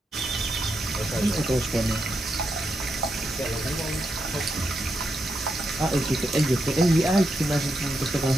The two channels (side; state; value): both; normal; correlation 0.83